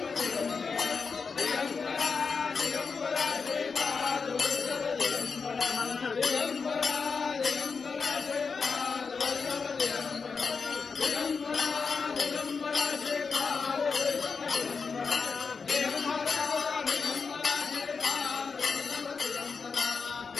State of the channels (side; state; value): right; quieter; 5.2 dB